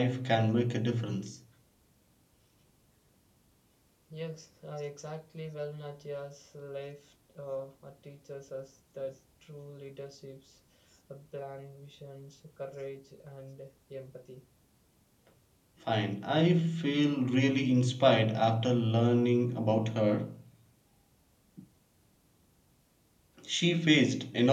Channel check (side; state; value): both; identical; correlation 1.00